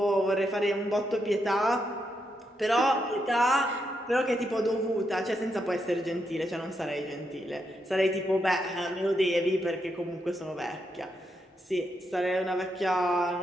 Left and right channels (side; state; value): both; normal; correlation 0.81